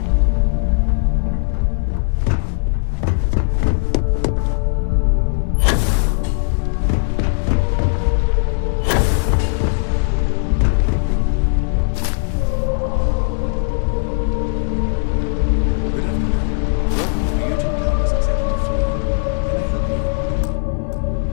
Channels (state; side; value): silent; right; 61 dB below the other